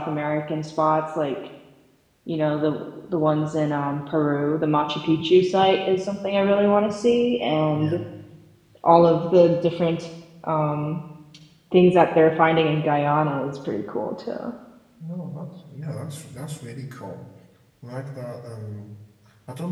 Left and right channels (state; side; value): identical; both; correlation 1.00